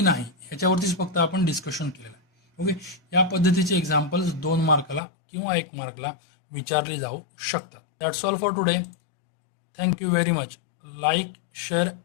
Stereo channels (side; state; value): right; drops out; at 5.0 s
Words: नाही ह्याच्यावरतीच फक्त आपण डिस्कशन केलेलं आहे. ओके, या पद्धतीचे एक्झाम्पल्स 2 मार्काला किंवा 1 मार्कला विचारले जाऊ शकतात. That's all for today. Thank you very much. Like, share